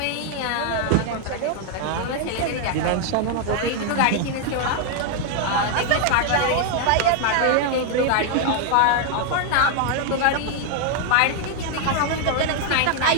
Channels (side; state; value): both; different; correlation 0.00